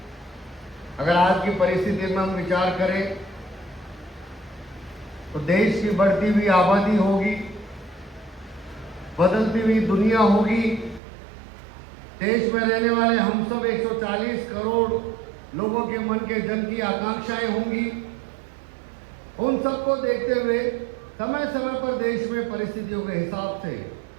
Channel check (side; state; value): left; drops out; at 11.0 s